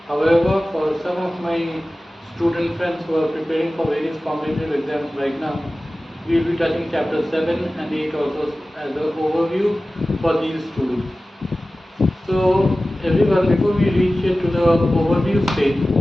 However, for some of my student friends who are preparing for various competitive exams right now, we will be touching chapter 7 and 8 also as an overview for these students. So everyone, before we reach to the overview stage,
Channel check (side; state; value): both; normal; correlation 0.96